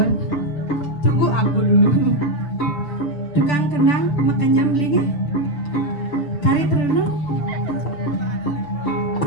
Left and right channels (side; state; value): right; late; 6.8 ms